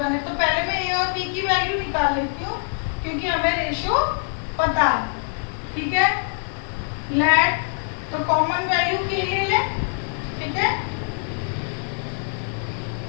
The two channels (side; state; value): right; silent; 58 dB below the other